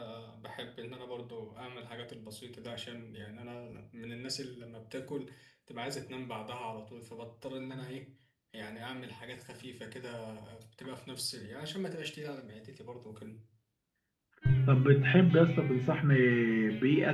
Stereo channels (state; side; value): identical; both; correlation 1.00